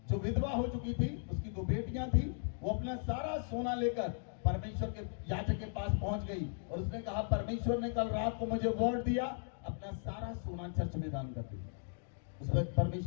जो विधवा हो चुकी थी, उसकी 2 बेटियां थी, वो अपना सारा सोना लेकर परमेश्वर के याजक के पास पहुंच गई और उसने कहा, परमेश्वर ने कल रात को मुझे वर्ड दिया, अपना सारा सोना चर्च में दान कर दिया। उस वक्त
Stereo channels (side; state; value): right; silent; digital silence